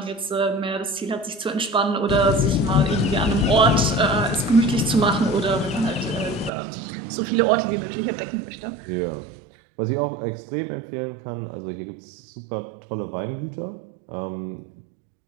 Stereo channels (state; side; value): drops out; left; at 6.5 s